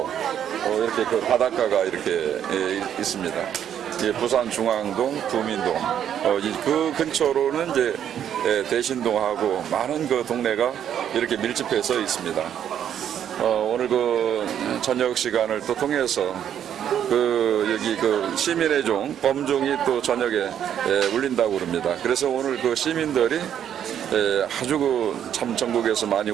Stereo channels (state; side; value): quieter; left; 9.6 dB